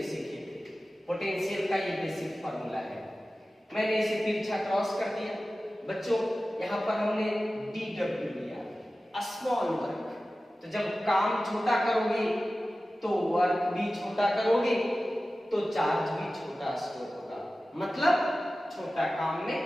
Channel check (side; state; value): both; normal; correlation 0.96